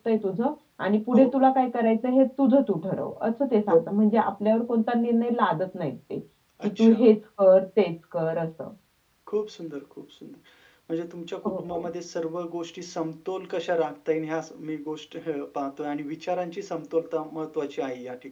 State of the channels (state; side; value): identical; both; correlation 1.00